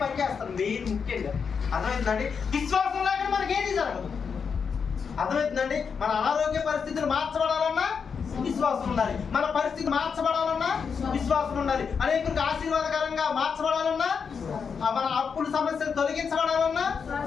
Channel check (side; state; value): right; quieter; 6.1 dB